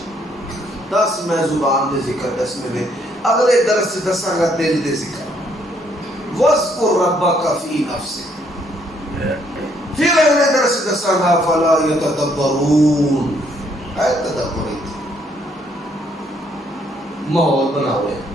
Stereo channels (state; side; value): normal; both; correlation 0.69